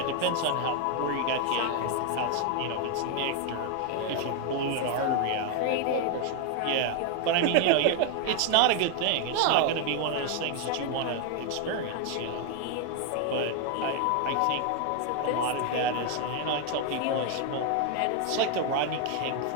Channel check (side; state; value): both; different; correlation 0.01